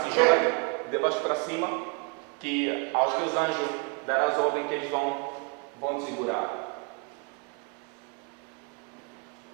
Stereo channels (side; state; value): left; quieter; 32.7 dB